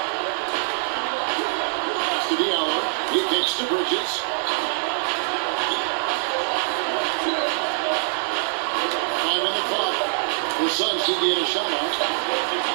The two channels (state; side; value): silent; left; digital silence